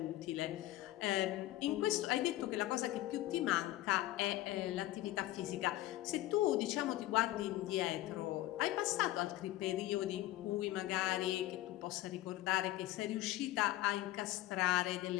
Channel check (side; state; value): right; quieter; 15.9 dB